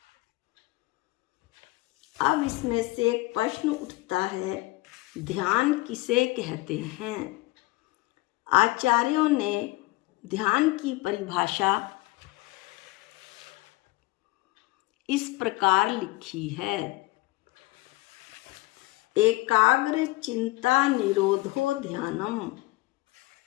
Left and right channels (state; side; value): quieter; right; 21.1 dB